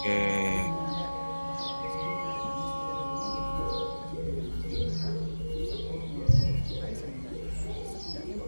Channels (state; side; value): inverted; both; correlation -1.00